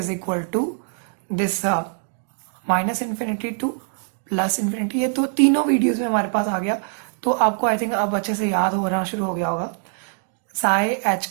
equal to this minus infinity to plus infinity. ये तो तीनों वीडियोस में हमारे पास आ गया, तो आपको आई थिंक अब अच्छे से याद होना शुरू हो गया होगा। Psi H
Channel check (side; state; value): left; silent; 63 dB below the other